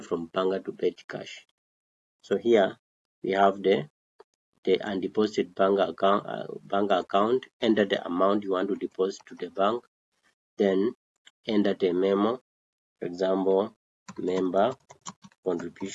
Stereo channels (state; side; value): identical; both; correlation 1.00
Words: from bank to petty cash. So here we have the undeposited bank account. Enter the amount you want to deposit to the bank, then enter the memo. For example, member